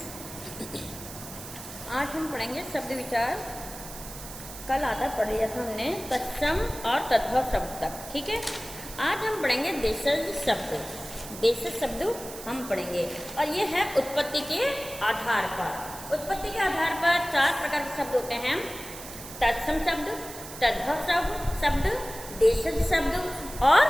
आज हम पढ़ेंगे शब्द विचार। कल आधा पढ़ लिया था हमने तत्सम और तद्भव शब्द तक, ठीक है। आज हम पढ़ेंगे देशज शब्द। देशज शब्द हम पढ़ेंगे और ये है उत्पत्ति के आधार पर। उत्पत्ति के आधार पर 4 प्रकार के शब्द होते हैं: तत्सम शब्द, तद्भव शब्द, देशज शब्द और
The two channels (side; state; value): right; noise; hiss, 13 dB below the sound